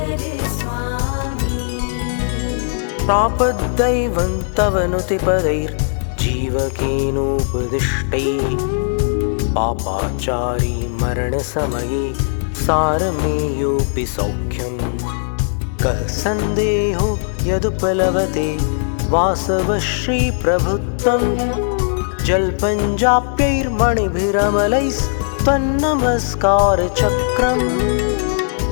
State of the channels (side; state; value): right; silent; digital silence